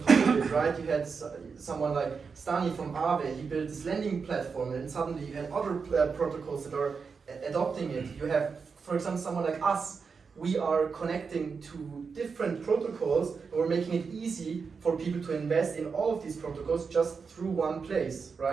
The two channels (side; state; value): left; quieter; 5.4 dB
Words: top of it, right? You had someone like Stani from Aave, he built this lending platform, and suddenly you had other protocols that are adopting it. You have, for example, someone like us. We are connecting to different protocols, and we're making it easy for people to invest in all of these protocols just through one place,